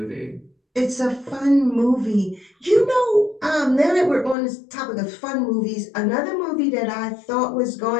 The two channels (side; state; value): right; drops out; at 4.4 s